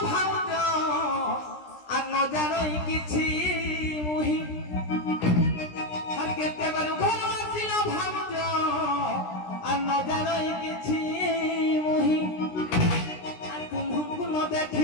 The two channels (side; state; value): right; late; 17 ms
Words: ভাউজ আর ন জানোই কিছু মুহি আর কেতে বলো ঘর আসিল ভাউজ আর ন জানোই কিছু মুহি আর তুমহু ন